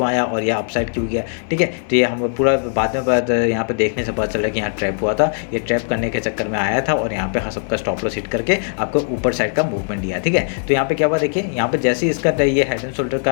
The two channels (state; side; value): silent; right; digital silence